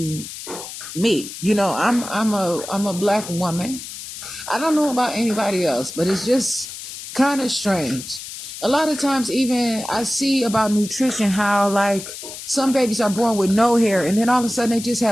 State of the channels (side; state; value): left; noise; hiss, 11 dB below the sound